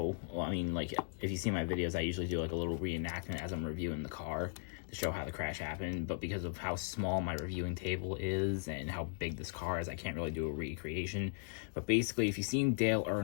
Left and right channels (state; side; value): silent; right; digital silence